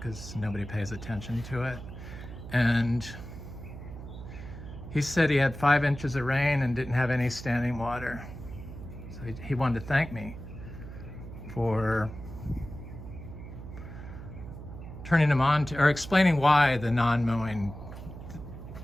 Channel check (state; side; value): noise; right; hum, 12 dB below the sound